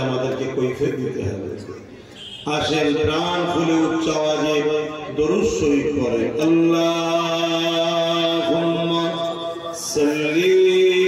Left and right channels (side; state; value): both; identical; correlation 1.00